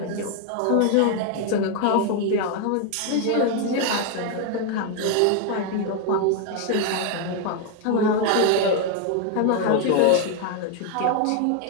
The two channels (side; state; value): both; different; correlation 0.01